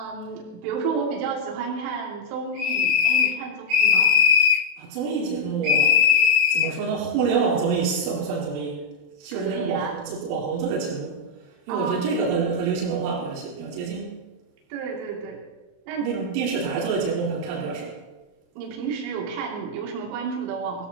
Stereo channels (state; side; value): late; left; 28 ms